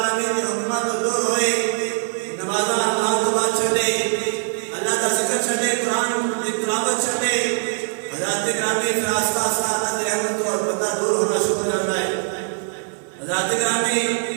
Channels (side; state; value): left; silent; 62 dB below the other